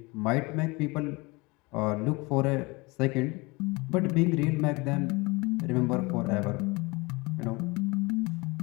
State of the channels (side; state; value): right; quieter; 25.4 dB